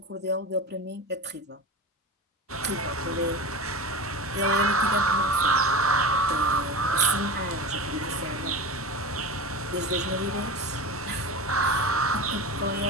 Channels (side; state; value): both; normal; correlation 0.27